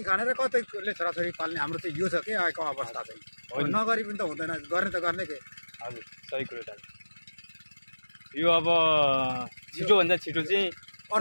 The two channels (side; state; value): both; inverted; correlation -1.00